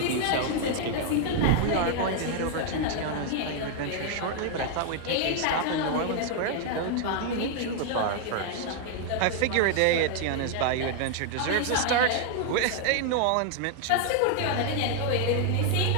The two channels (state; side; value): different; both; correlation 0.00